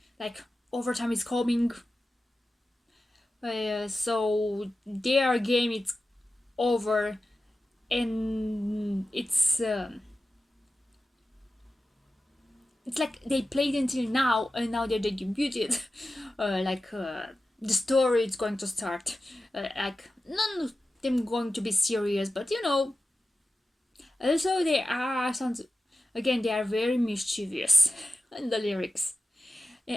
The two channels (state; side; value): normal; both; correlation 0.93